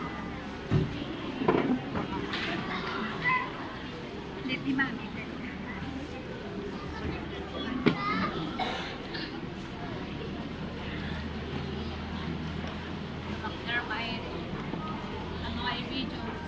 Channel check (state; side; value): identical; both; correlation 1.00